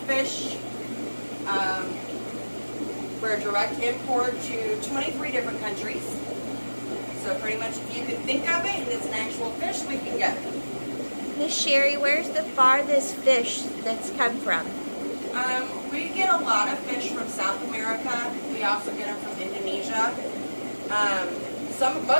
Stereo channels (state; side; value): inverted; both; correlation -1.00